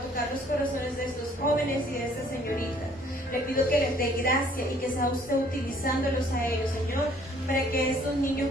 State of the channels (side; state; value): both; normal; correlation 0.59